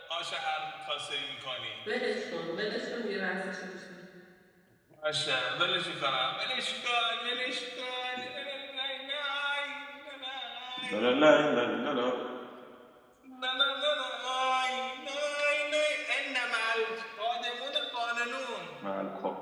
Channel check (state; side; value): identical; both; correlation 1.00